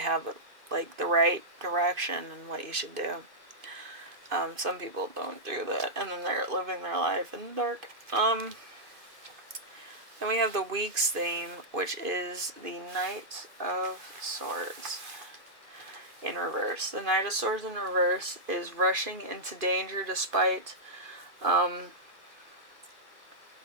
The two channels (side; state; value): left; late; 2.5 ms